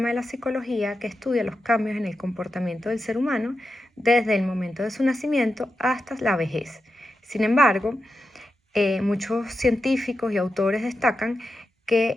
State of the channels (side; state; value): both; normal; correlation 0.89